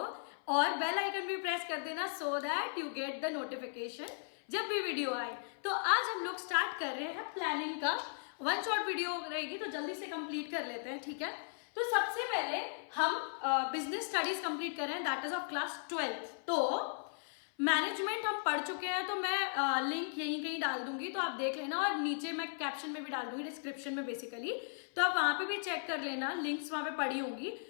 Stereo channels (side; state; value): right; silent; 53 dB below the other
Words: और बेल आइकन भी प्रेस कर देना so that you get the notification जब भी वीडियो आए. तो आज हम लोग स्टार्ट कर रहे हैं प्लानिंग का. वन शॉट वीडियो रहेगी तो जल्दी से कंप्लीट कर लेते हैं, ठीक है. तो सबसे पहले हम बिजनेस स्टडीज कंप्लीट कर रहे हैं, that is of class 12th. तो मैनेजमेंट हम पढ़ चुके हैं, तो मैं लिंक यहीं कहीं डाल दूंगी, तो आप देख लेना. और नीचे मैं कैप्शन में भी डाल दूंगी, डिस्क्रिप्शन में बेसिकली. तो आप वहां पे भी चेक कर लेना, लिंक्स वहां पे पड़ी होंगी.